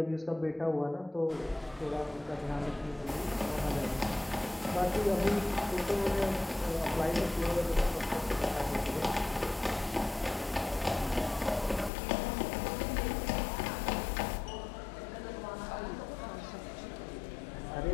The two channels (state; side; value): drops out; right; at 11.9 s